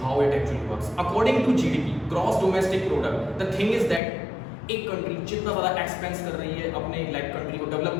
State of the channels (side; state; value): right; drops out; at 4.0 s